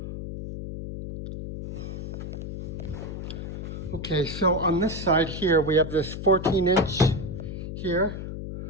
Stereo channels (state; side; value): noise; left; hum, 7 dB below the sound